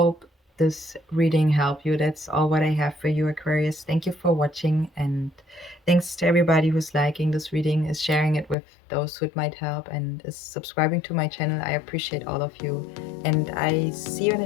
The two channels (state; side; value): drops out; right; at 8.6 s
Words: this reading helped you. That's all what I have for you, Aquarius. Thank you for watching, and thanks to everybody who's liking this reading, is sharing it with those who it might help, and is subscribing to my channel. I appreciate all of you, and I see you in the